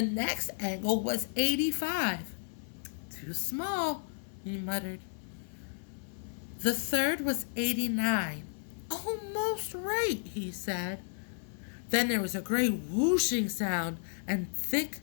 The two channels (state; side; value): silent; right; 56 dB below the other